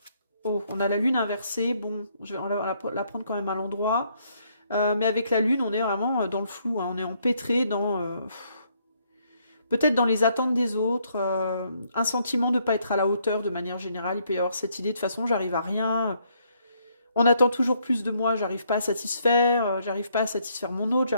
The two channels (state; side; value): inverted; both; correlation -0.70